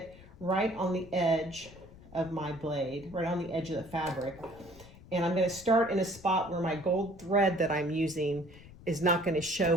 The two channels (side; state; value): left; noise; rumble, 20 dB below the sound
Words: right on the edge of my blade, right on the edge of the fabric. And I'm going to start in a spot where my gold thread that I'm using is not going to show